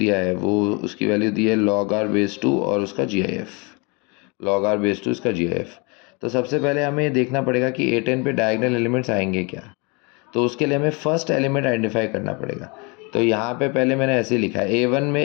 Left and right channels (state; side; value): quieter; right; 30.3 dB